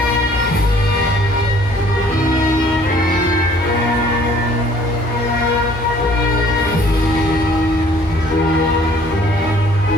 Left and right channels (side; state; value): both; normal; correlation 0.57